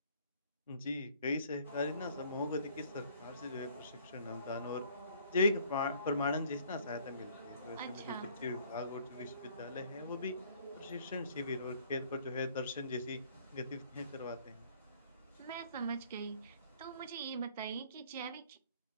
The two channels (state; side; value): inverted; both; correlation -0.57